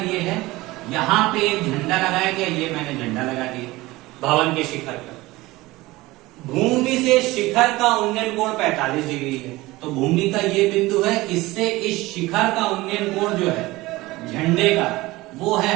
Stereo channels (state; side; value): quieter; left; 19.7 dB